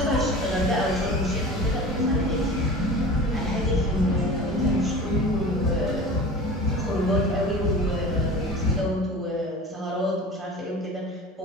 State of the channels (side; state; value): both; normal; correlation 0.37